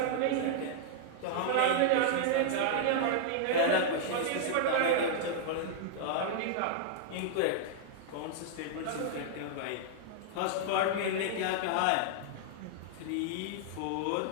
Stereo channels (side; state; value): both; different; correlation -0.01